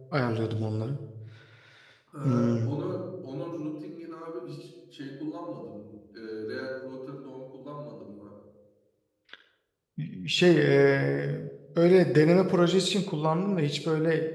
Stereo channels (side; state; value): both; identical; correlation 1.00